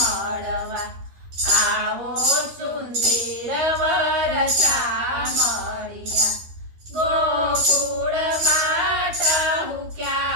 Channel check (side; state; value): left; late; 13 ms